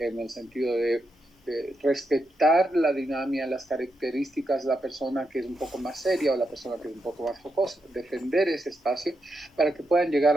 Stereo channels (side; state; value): both; normal; correlation 0.84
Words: el sentido de respetar la dinámica, las características de la persona que es un poco más seria o la persona que es un poco más jocosa, defender ese espacio para que puedan llegar